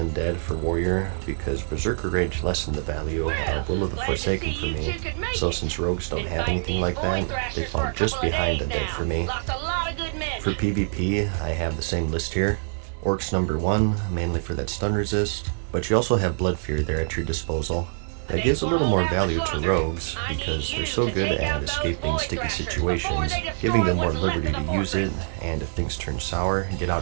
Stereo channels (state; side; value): silent; left; digital silence